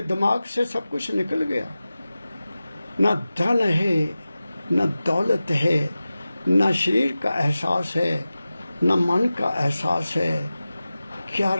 दिमाग से सब कुछ निकल गया। न धन है, न दौलत है, न शरीर का एहसास है, न मन का एहसास है। क्या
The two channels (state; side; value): inverted; both; correlation -0.95